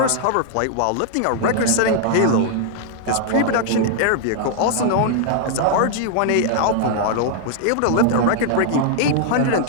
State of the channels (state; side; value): different; both; correlation -0.01